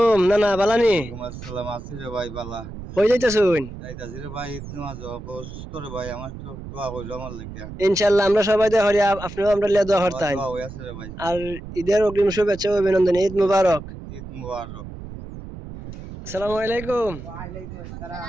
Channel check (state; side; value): noise; right; rumble, 12 dB below the sound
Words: নানা বালানি। ওয়ালাইকুম আসসালাম, আছি রে ভাই বালা। কই যাইতেছেন? যাইতাছি রে ভাই, ঈদ নামাজ অসুস্থ রে ভাই, আমার তো দোয়া কইলো আমার লাগিয়া। ইনশাআল্লাহ আমরা সবাই দোয়া করি, আপনিও আমরা লিয়া দোয়া আমার করতেন। দোয়া হয়ে আছে রে ভাই। আর ঈদের অগ্রিম শুভেচ্ছা ও অভিনন্দন। ঈদ মুবারক। ঈদ মুবারক। আসসালামু আলাইকুম। ওয়ালাইকুম আসসালাম।